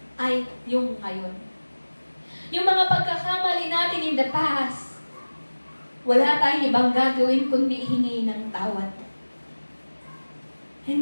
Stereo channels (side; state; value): both; inverted; correlation -1.00